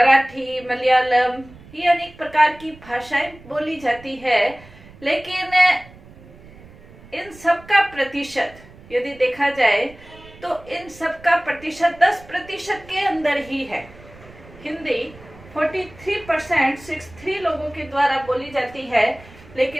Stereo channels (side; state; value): right; noise; rumble, 21 dB below the sound